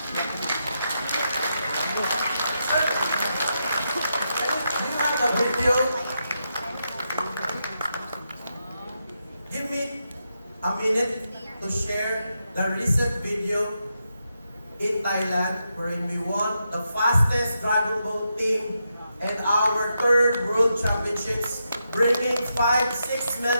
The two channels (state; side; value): inverted; both; correlation -0.84